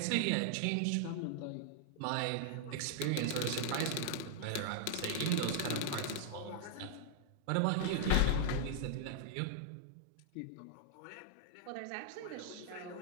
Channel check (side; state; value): both; different; correlation -0.01